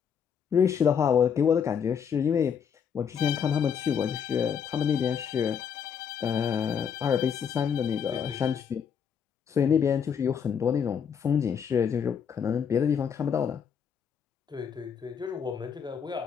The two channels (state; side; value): quieter; right; 7.4 dB